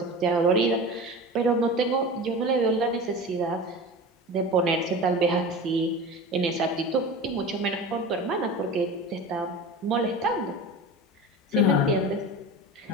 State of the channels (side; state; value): both; normal; correlation 0.32